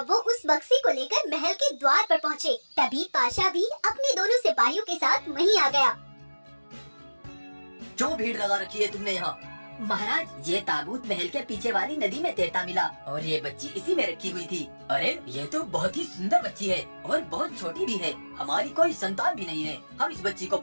वो उस बक्से को लेकर महल के द्वार पर पहुँचे। तभी पाशा भी अपने दोनों सिपाहियों के साथ वहीं आ गया। क्यों भीड़ लगा रखी है तुमने यहाँ? महाराज, ये ताबूत महल के पीछे वाली नदी में तैरता मिला और ये बच्ची इसी में रखी हुई थी। अरे ये तो बहुत ही सुंदर बच्ची है और बहुत छोटी भी है। हमारी कोई संतान भी नहीं है, हम इस बच्ची को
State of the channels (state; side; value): inverted; both; correlation -1.00